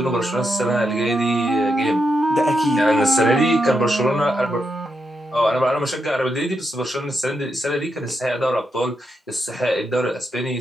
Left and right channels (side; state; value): both; normal; correlation 0.83